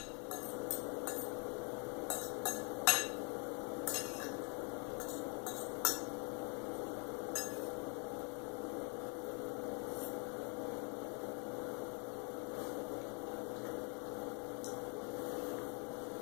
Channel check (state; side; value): quieter; right; 36.7 dB